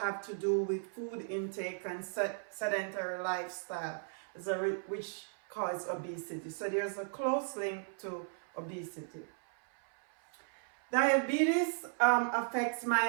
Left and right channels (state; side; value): silent; left; 54 dB below the other